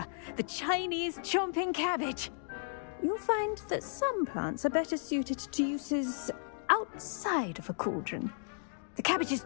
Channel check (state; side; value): silent; right; digital silence